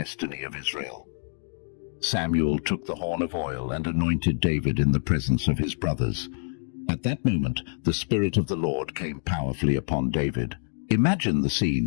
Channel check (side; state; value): right; silent; digital silence